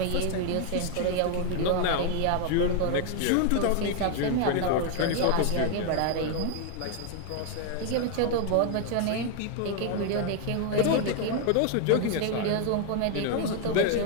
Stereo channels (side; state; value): both; different; correlation 0.00